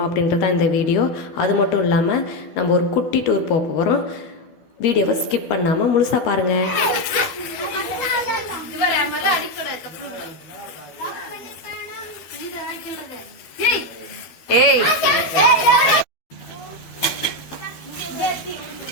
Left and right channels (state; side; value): late; right; 12 ms